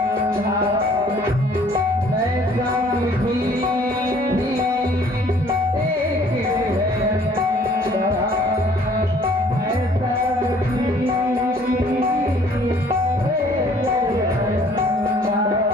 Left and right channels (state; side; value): normal; both; correlation 0.57